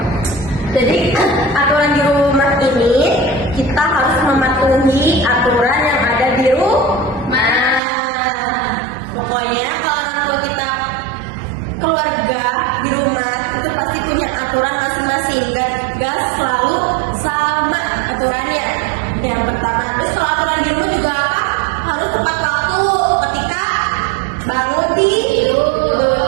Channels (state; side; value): drops out; left; at 7.8 s